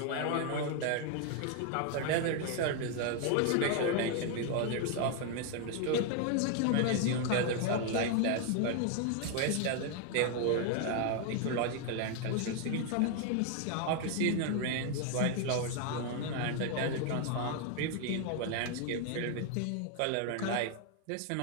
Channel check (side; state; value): both; different; correlation 0.00